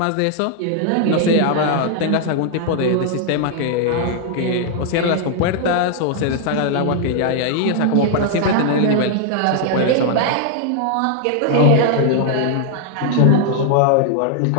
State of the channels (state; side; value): different; both; correlation 0.00